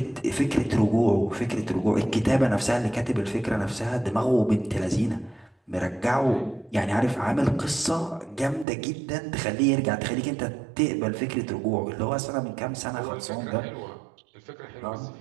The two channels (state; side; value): drops out; left; at 8.7 s